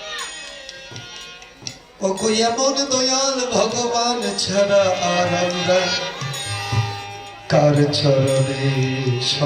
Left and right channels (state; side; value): identical; both; correlation 1.00